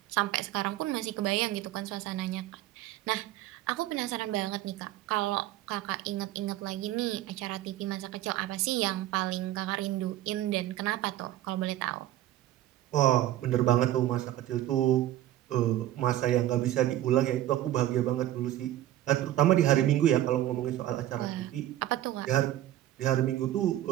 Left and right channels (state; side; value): quieter; left; 13.8 dB